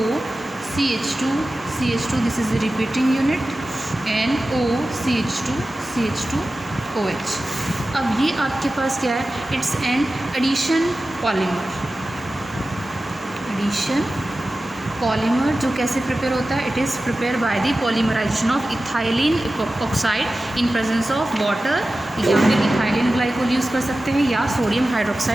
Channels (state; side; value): normal; both; correlation 0.95